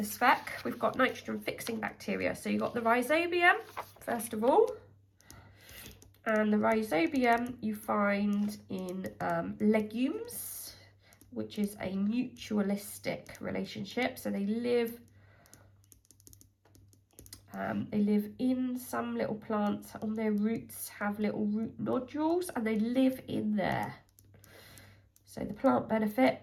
spec, we've got nitrogen fixing bacteria. So you've got the rhizobium, first of all. And the rhizobium you find in legumes, which is a mutualistic relationship. So they live in some little plants. On their roots have little root nodules, and they live in there. So the plant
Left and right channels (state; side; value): identical; both; correlation 1.00